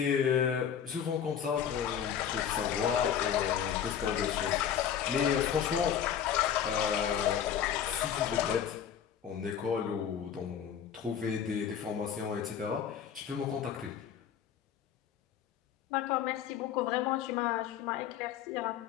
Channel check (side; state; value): right; quieter; 8.8 dB